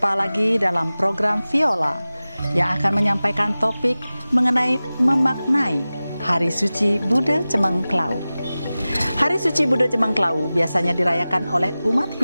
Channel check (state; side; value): inverted; both; correlation -0.97